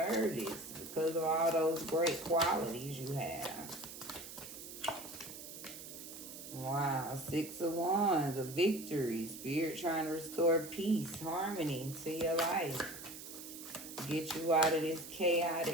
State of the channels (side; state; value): right; noise; hiss, 12 dB below the sound